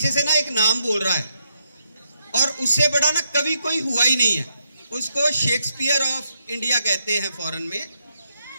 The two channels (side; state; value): both; inverted; correlation -0.80